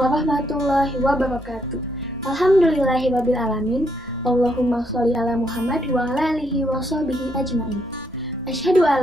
wabarakatuh. Alhamdulillahirabbil alamin. Allahumma sholli ala Muhammad wa ala alihi wa sahbihi ajmain. Asyhadu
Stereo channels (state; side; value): normal; both; correlation 0.75